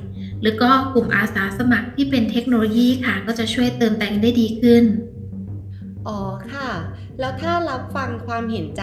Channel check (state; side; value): identical; both; correlation 1.00